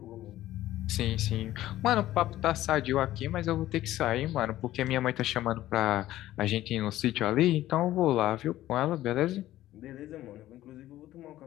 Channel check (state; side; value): quieter; right; 14.5 dB